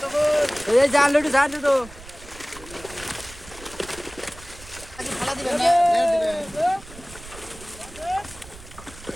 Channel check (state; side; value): noise; right; rumble, 18 dB below the sound